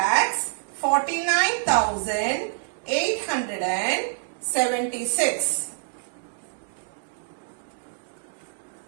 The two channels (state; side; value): silent; left; digital silence